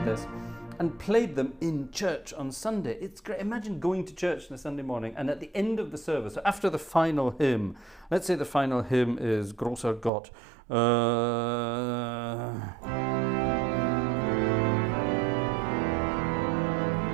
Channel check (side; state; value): left; drops out; at 10.1 s